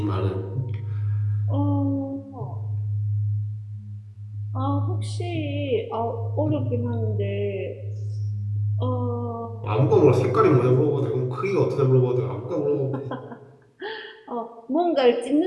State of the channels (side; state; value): both; identical; correlation 1.00